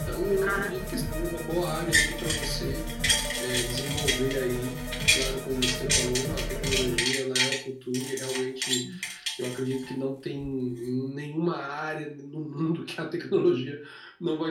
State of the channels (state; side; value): identical; both; correlation 1.00